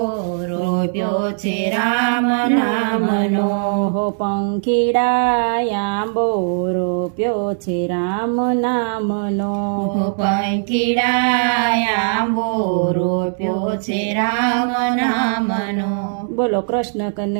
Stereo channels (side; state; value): left; silent; 67 dB below the other